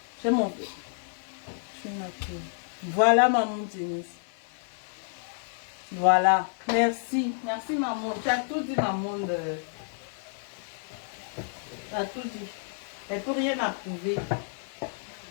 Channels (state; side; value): silent; right; digital silence